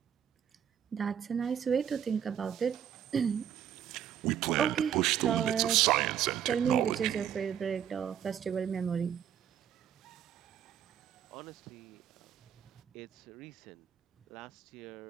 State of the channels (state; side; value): quieter; left; 9.2 dB